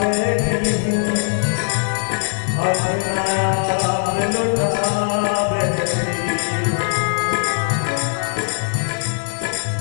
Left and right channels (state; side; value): silent; right; digital silence